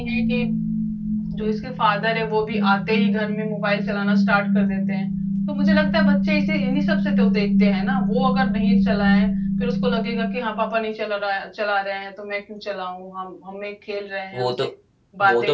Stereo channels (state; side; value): identical; both; correlation 1.00